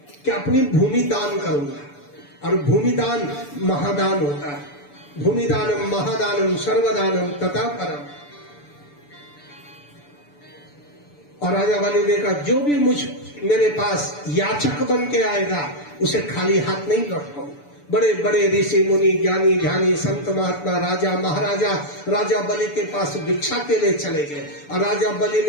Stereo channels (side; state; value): right; late; 6.9 ms